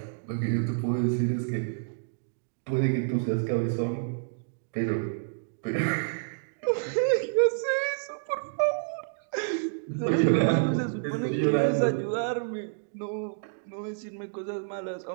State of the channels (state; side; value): silent; left; digital silence